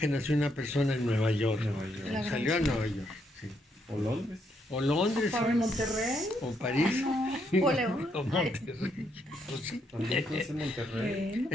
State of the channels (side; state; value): both; normal; correlation 0.75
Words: nació una persona en Nueva York? Salió a Nueva York. Sí. O Londres. O Londres. ¿O Monterrey? O París. O León. O Monterrey. Pues sí. También conoce Monterrey.